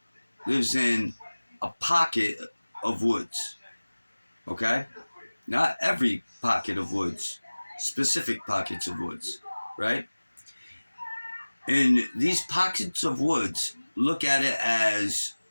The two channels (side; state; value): both; inverted; correlation -1.00